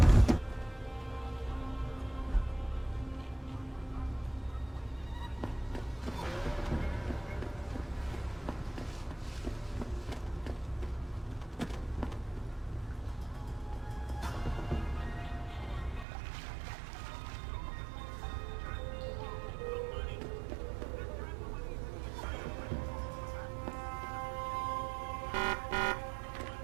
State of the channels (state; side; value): drops out; left; at 16.1 s